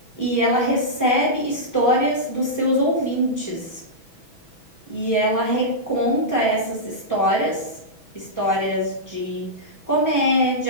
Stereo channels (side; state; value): right; late; 6.1 ms